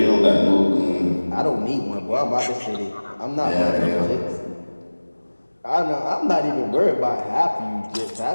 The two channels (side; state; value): both; inverted; correlation -1.00